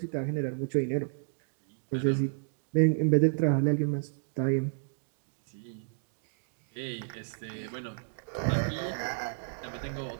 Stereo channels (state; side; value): silent; left; digital silence